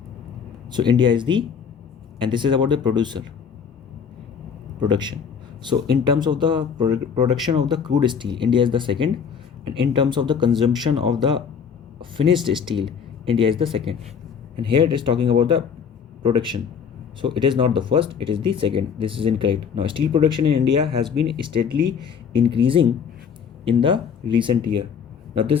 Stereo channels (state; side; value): quieter; right; 6.8 dB